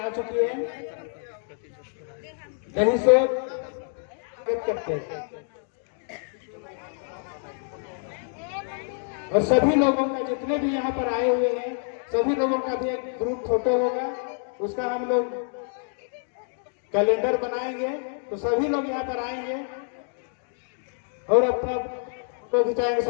चुकी है। यही सोच करते हैं और सभी लोगों का जितने भी यहाँ पर आए हुए हैं सभी लोगों का भी एक ग्रुप फोटो होगा, उसका हम लोग कैलेंडर बनाएंगे तो सभी लोग यहाँ पर आएंगे और अपना फोटो खिंचाएंगे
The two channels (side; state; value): right; silent; 60 dB below the other